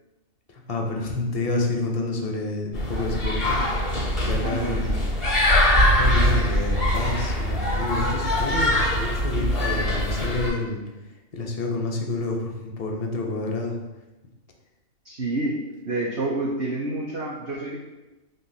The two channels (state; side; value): late; left; 2.7 ms